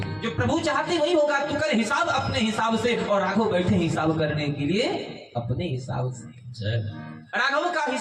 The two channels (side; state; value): both; identical; correlation 1.00